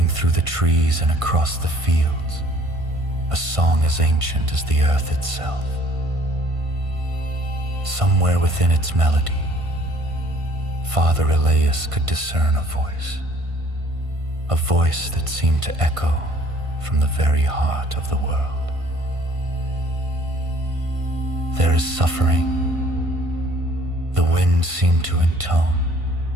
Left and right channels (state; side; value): late; left; 1.5 ms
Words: through the trees and across the fields, a song as ancient as the earth itself. Somewhere within its melody, Father Elias could discern a voice that seemed to echo from the very heart of the world. There is suffering, the wind seemed to intone,